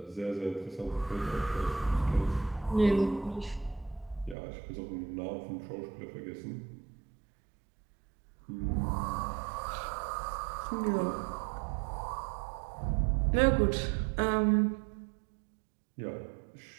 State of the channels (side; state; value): left; drops out; at 4.4 s